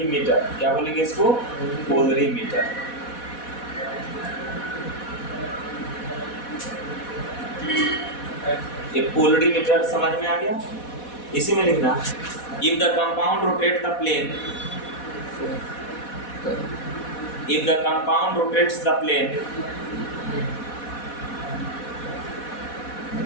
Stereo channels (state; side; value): late; right; 4.1 ms